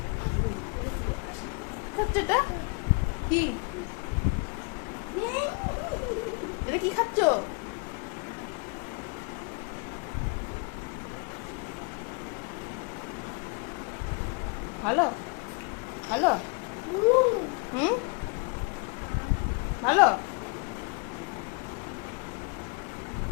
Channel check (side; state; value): right; quieter; 33.2 dB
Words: খাচ্ছে এটা কি? এটা কি খাচ্ছ? ভালো ভালো, হুম ভালো।